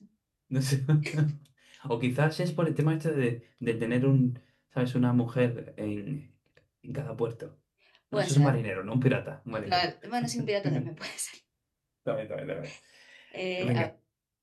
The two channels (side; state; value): both; identical; correlation 1.00